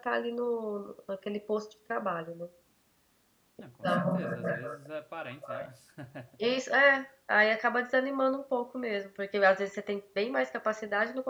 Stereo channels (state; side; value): identical; both; correlation 1.00